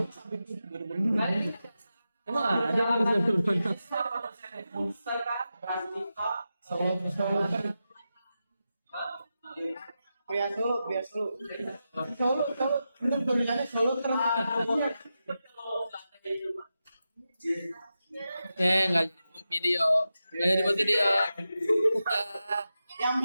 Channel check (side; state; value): both; inverted; correlation -0.90